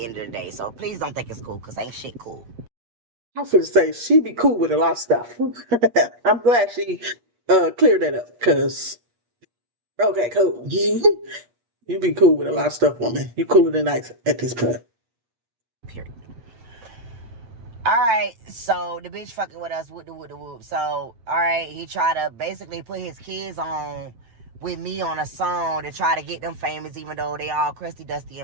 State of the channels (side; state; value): left; late; 8.4 ms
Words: end of the day. So please don't think it's cool because ain't shit cool. I'm finna say she be cool with a lot of stuff. I'm glad she cleared that up, cause okay, cool. You be cool with a lot of stuff, woman. You cooler than ice at this point. Period. Alright, so the bitch fucking with us with the whoop. So, alright, he tried to basically put his kids on with me on a song to try to get them famous, even though they all crusty, dusty,